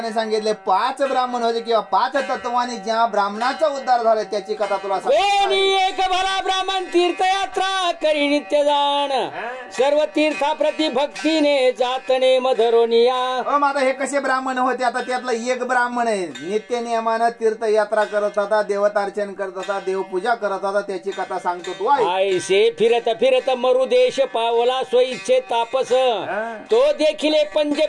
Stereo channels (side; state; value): both; identical; correlation 1.00